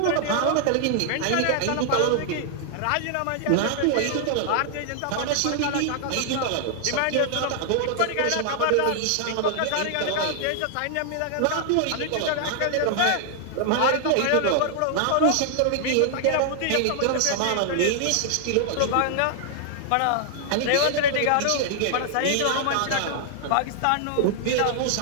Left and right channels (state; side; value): different; both; correlation 0.00